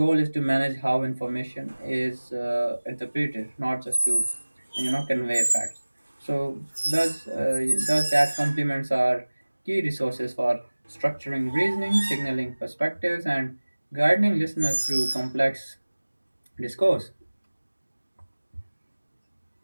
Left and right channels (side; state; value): both; inverted; correlation -1.00